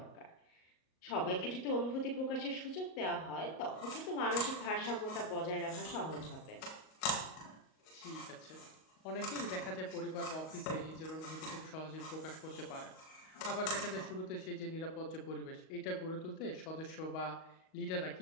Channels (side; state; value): right; late; 38 ms